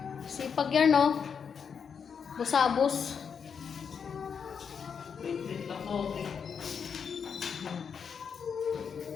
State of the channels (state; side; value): quieter; right; 6.7 dB